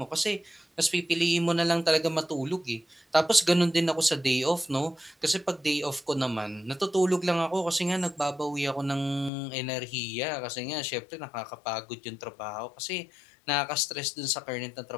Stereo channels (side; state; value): right; drops out; at 9.3 s